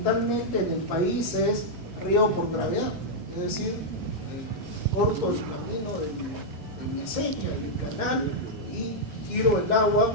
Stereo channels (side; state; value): both; normal; correlation -0.04